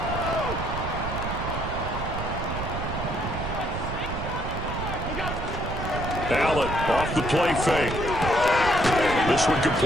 Allen off the play fake. This one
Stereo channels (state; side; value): noise; right; rumble, 5 dB below the sound